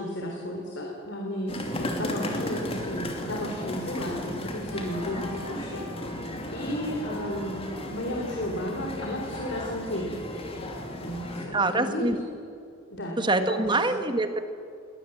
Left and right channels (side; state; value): both; normal; correlation 0.32